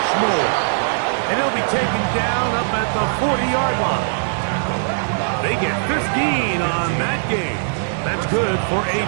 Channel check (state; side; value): silent; left; 66 dB below the other